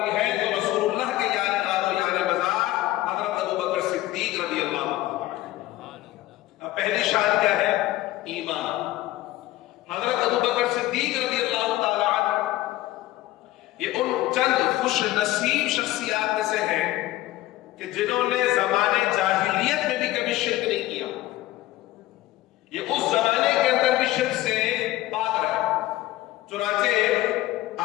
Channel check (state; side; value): quieter; right; 16.5 dB